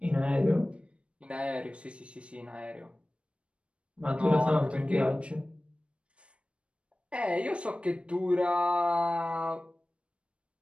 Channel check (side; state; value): left; late; 0.060 ms